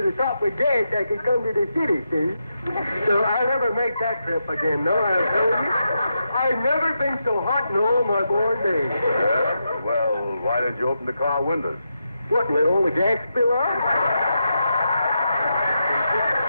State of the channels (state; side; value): inverted; both; correlation -0.85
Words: the top with gas, I could come to the city, see? So I'll never make that trip again, no, I'll tell you. I've never been so hot in all my born days. Yeah? Well, why didn't you open the car windows? What, let all the gas spill out?